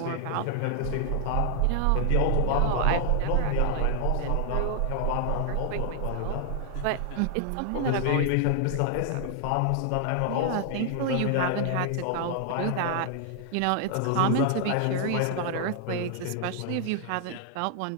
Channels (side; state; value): both; different; correlation 0.00